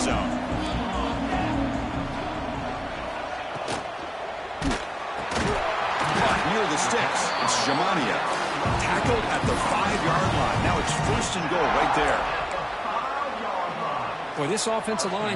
zone. Near the sticks, it's Jamania. Tackled at the 5-yard line. Now it's 1st and goal right there. Boy, this offensive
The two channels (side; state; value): both; identical; correlation 1.00